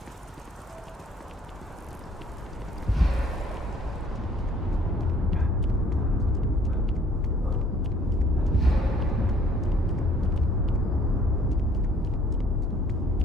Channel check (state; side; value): normal; both; correlation 0.58